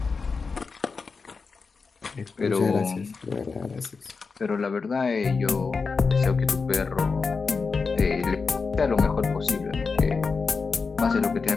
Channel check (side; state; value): right; quieter; 4.8 dB